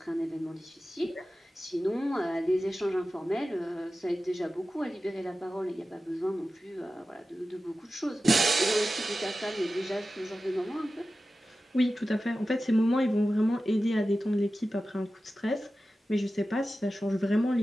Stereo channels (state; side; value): normal; both; correlation 0.94